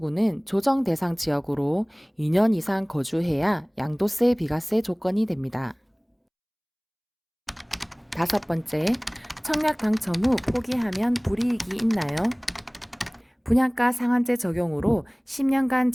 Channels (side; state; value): both; identical; correlation 1.00